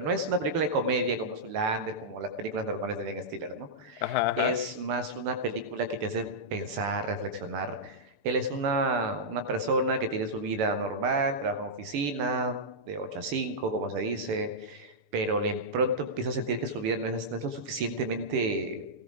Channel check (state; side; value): late; left; 6.8 ms